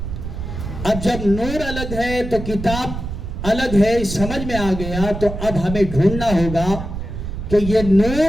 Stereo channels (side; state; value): right; noise; rumble, 7 dB below the sound